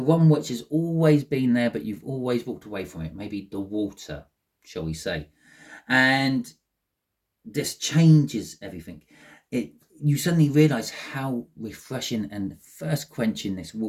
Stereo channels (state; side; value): identical; both; correlation 1.00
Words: one which has always been there, but you've always walked away from it. Maybe the water, shall we say. And this changes everything. You suddenly realize how refreshing and thirst quenching this